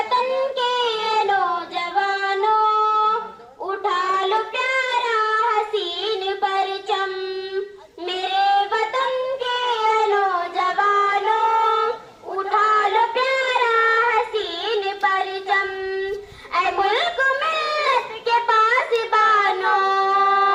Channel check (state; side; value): identical; both; correlation 1.00